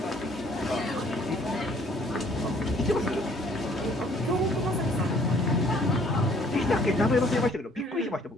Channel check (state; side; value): normal; both; correlation 0.59